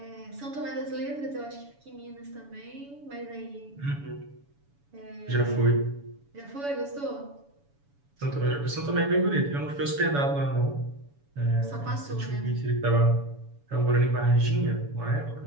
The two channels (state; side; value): late; left; 7.1 ms